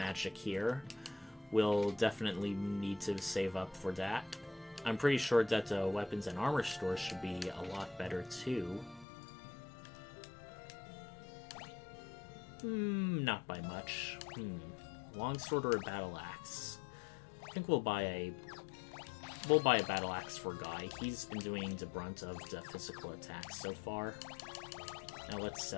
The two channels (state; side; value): drops out; right; at 9.1 s